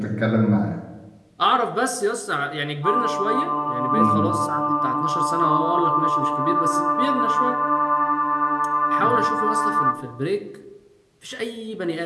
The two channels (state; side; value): identical; both; correlation 1.00